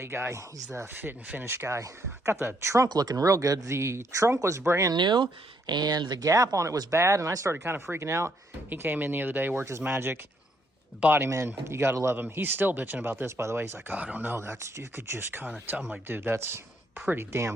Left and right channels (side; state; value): both; normal; correlation 0.72